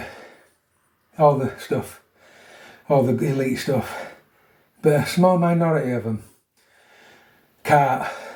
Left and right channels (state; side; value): identical; both; correlation 1.00